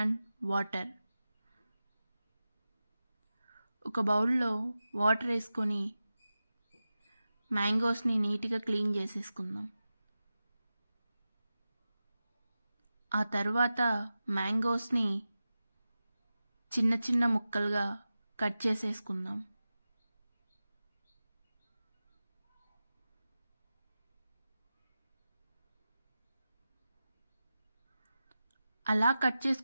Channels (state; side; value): inverted; both; correlation -0.94